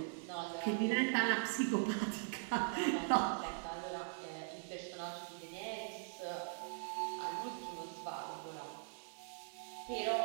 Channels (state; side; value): silent; left; 50 dB below the other